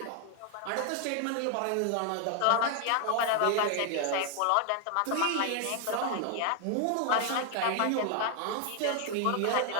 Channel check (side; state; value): both; different; correlation 0.00